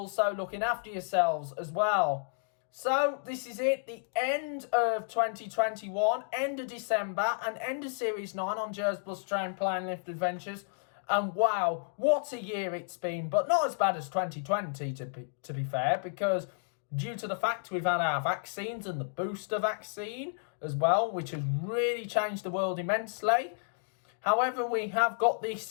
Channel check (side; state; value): right; silent; digital silence